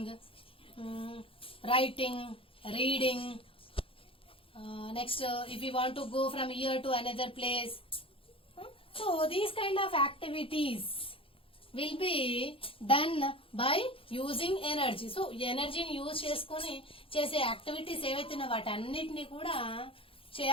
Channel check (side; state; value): right; late; 0.26 ms